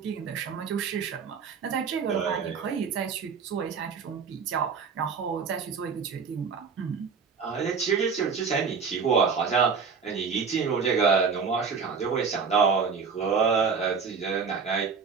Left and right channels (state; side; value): quieter; left; 5.7 dB